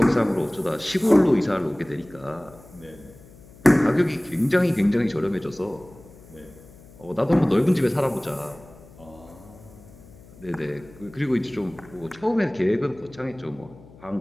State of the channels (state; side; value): noise; left; hum, 22 dB below the sound